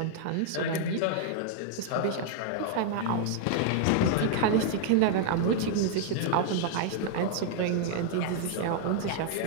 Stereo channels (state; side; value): different; both; correlation 0.00